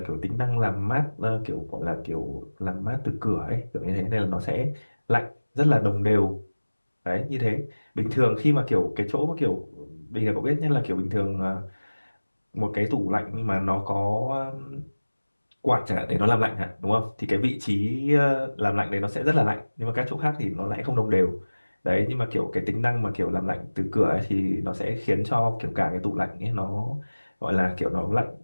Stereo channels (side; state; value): both; inverted; correlation -1.00